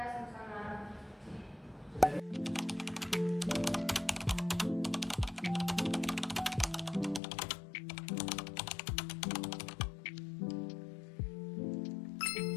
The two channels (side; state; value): right; drops out; at 7.2 s